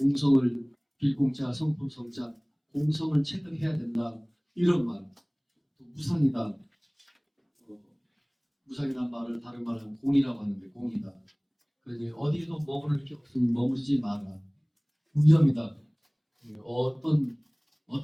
빌공자, 성품성자, 공성을 체득해야 된다. 이런 말. 또 무상이다. 무상이라는 말을 다른 말로 하면 공이라고 하는데 공이다. 그러니 어디도 머무를 게 없으니 머무르지 마라. 무념이다.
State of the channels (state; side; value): identical; both; correlation 1.00